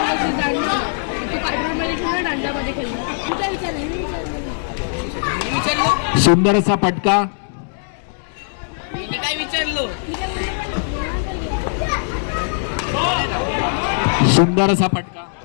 जाणार तू काटरोडमध्ये खेळणार, दांडामध्ये खेळणार. तुझा विचार आहे, मी विचारलं. सुंदर असा फटका, मी काय विचारलो. सुंदर असा फटका.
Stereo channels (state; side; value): silent; right; digital silence